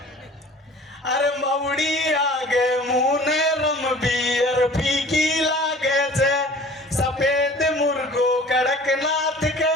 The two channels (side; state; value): both; normal; correlation 0.46